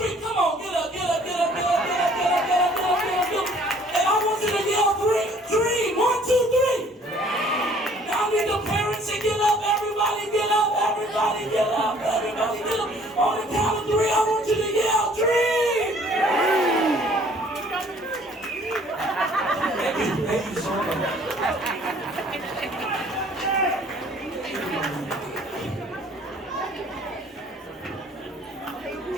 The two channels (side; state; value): both; normal; correlation 0.56